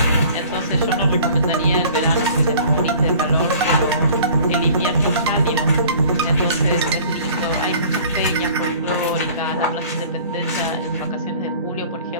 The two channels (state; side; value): inverted; both; correlation -0.48